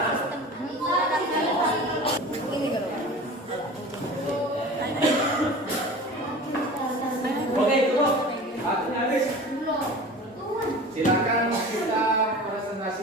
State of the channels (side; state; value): both; normal; correlation 0.37